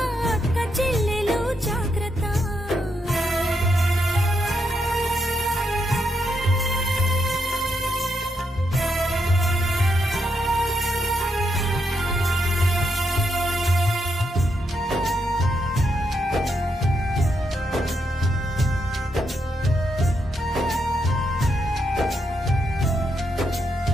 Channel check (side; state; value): both; normal; correlation 0.80